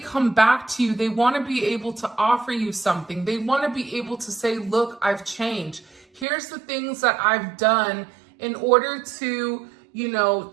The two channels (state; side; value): drops out; left; at 6.2 s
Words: back to you, they want to be able to offer you something. They want to be able to say, look, I've changed. Here's the things that I've done in order to, you know,